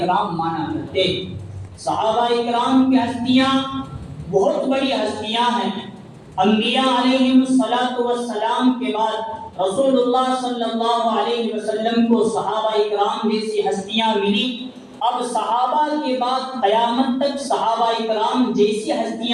مانا کرتے۔ صحابہ اکرام کی ہستیاں بہت بڑی ہستیاں ہیں، انبیاء علیہم کے بعد رسول اللہ صلی اللہ علیہ وسلم کو صحابہ کرام جیسی ہستیاں ملی. اب صحابہ کے بعد قیامت تک صحابہ کرام جیسی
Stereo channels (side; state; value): both; identical; correlation 1.00